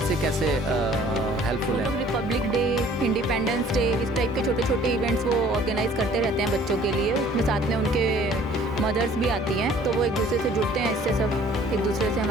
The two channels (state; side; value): normal; both; correlation 0.54